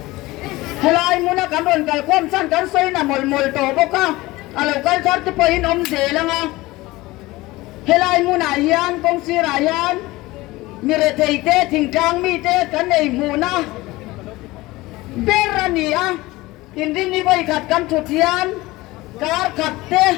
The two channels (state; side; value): quieter; right; 19.7 dB